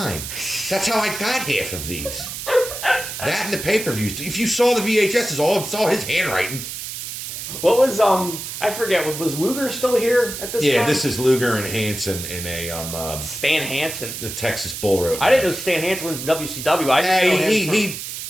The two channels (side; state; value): right; noise; hiss, 7 dB below the sound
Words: That's how I got half of these. That and the pay-per-views. If you saw the VHSs, all saw his handwriting. What was, I forget, was Luger still here at this time? Yeah, this is Luger and Hansen in a, Stan Hansen. the Texas Bull Rope. I didn't know Stan Hansen was in WCW.